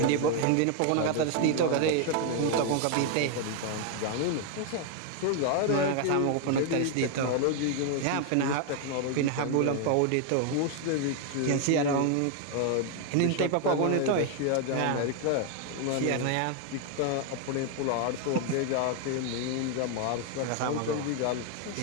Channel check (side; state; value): both; different; correlation 0.00